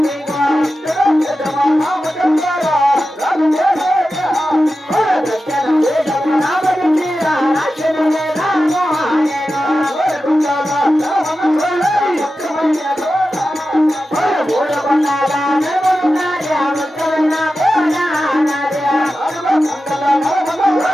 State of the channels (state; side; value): normal; both; correlation 0.92